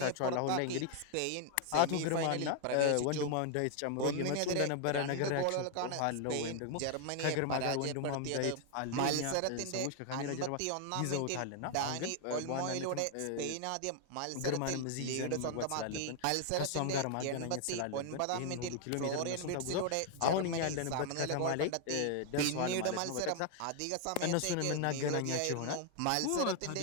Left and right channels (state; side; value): different; both; correlation 0.00